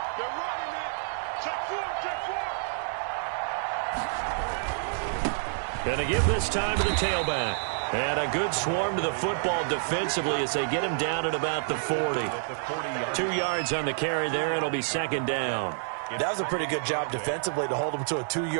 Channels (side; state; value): left; silent; digital silence